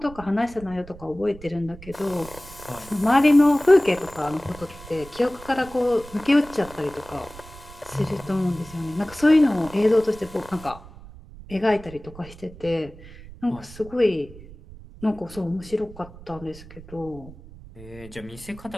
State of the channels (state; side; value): noise; right; rumble, 18 dB below the sound